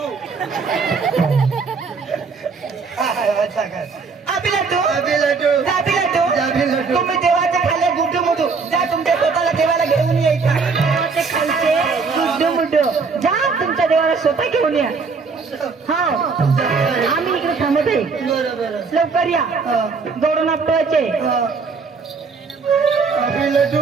अच्छा काय अभि लाडू अभि लड्डू जाबी लाडू जाबी लड्डू तुम्ही देवाच्या खाली गुड्डू मुडू जा तुमच्या स्वतःला देवाला घेऊन यायचा देवाचे खालचे गुड्डू मुड्डू जा तुमच्या देवाला स्वतः घेऊन या हा आम्ही इकडे थांबत आहे बरं बरं लवकर या जोडून आपटवायचे अभि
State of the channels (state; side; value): quieter; left; 4.8 dB